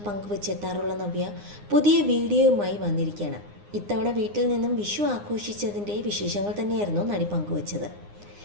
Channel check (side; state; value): left; late; 9.7 ms